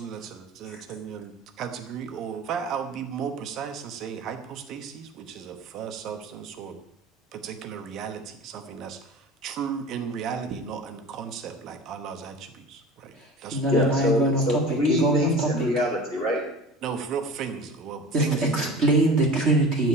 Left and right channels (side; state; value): both; normal; correlation 0.37